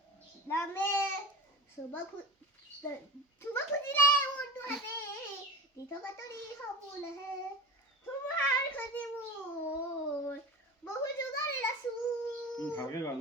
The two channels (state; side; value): normal; both; correlation 0.29